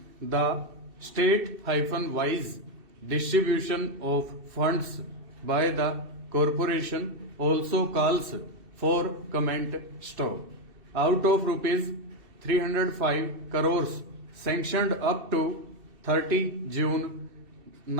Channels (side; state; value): left; late; 2.7 ms